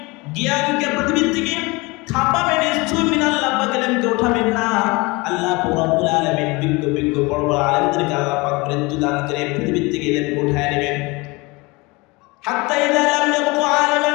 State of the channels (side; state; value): right; quieter; 25.0 dB